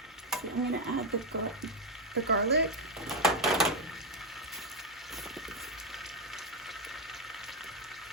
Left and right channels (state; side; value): normal; both; correlation 0.06